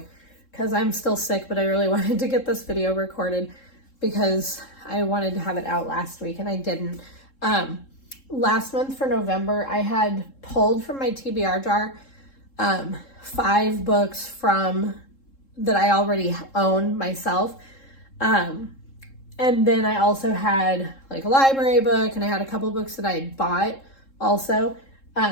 because I'm still sick, but I really wanted to get this video recorded because I wanted to have it out last week and I didn't. Last month for November, I had pulled from my TBR jar 5 books from that I already own myself. And then I also had like a library book, and I had a couple books that I had bought also.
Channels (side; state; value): right; late; 3.7 ms